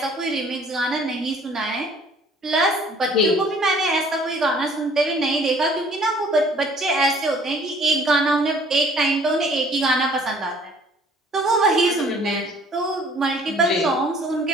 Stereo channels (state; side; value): normal; both; correlation 0.55